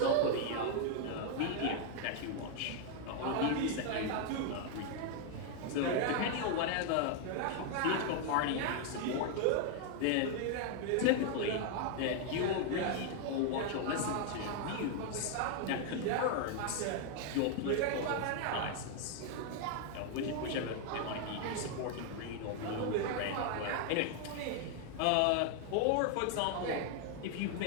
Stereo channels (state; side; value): different; both; correlation 0.00